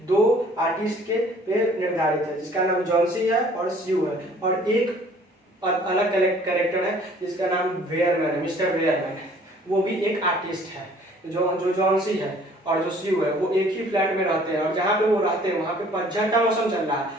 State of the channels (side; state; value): both; normal; correlation 0.55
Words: दो आर्टिस्ट के पे निर्धारित है, जिसका नाम जॉन्सी है और स्यू है, और एक अलग कैरेक्टर है जिसका नाम वेयरमैन है, मिस्टर वेयरमैन। वो भी एक आर्टिस्ट है। जो जॉन्सी है और जो स्यू है वो एक ही फ्लैट में रहते हैं, और जहाँ पे वो रहते हैं वहाँ पे पतझड़ का मौसम चल रहा है।